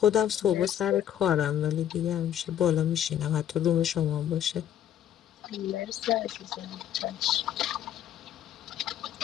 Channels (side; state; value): right; quieter; 10.4 dB